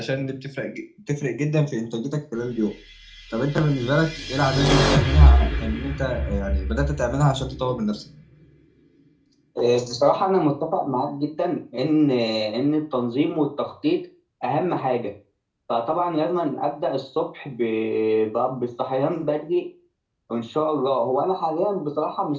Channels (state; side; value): identical; both; correlation 1.00